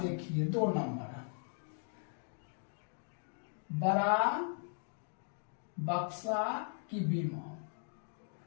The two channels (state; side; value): silent; right; 52 dB below the other